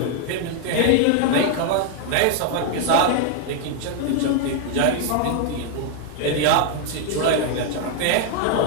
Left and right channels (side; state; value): both; different; correlation 0.00